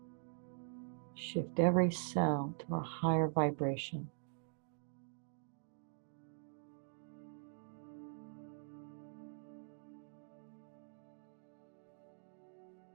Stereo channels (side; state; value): left; silent; digital silence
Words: shift every cell to a higher vibration.